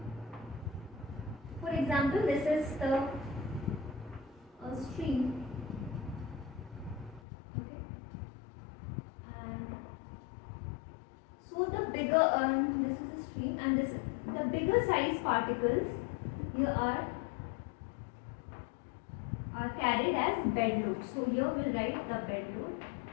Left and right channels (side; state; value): right; drops out; at 7.2 s